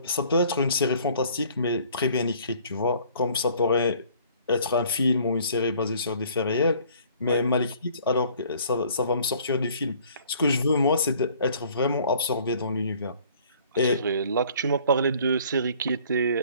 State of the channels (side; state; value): both; inverted; correlation -0.56